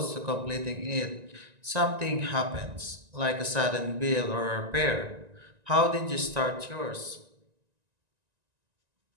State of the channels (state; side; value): late; left; 1.9 ms